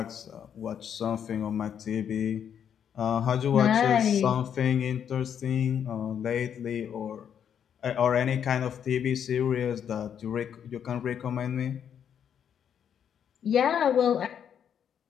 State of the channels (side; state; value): right; quieter; 8.5 dB